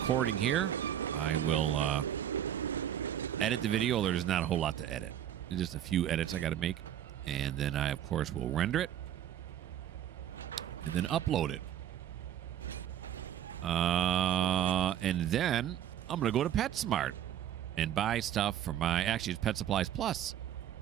here, I will edit the video. There's not a whole lot to edit. There's just a few edits I got to make. And then I, of course, will render it. And then upload it. And then I'm going to go to PetSmart and buy stuff for my... Actually, it's Pet Supplies Plus.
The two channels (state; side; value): quieter; left; 10.7 dB